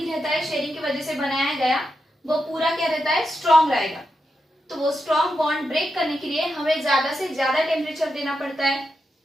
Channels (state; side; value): normal; both; correlation 0.86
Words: रहता है शेयरिंग की वजह से बनाया गया, वो पूरा क्या रहता है, स्ट्रॉन्ग रहेगा। तो वो स्ट्रॉन्ग बॉन्ड ब्रेक करने के लिए हमें ज्यादा से ज्यादा टेम्परेचर देना पड़ता है,